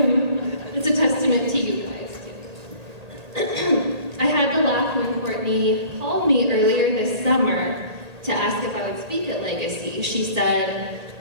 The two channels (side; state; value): left; late; 1.8 ms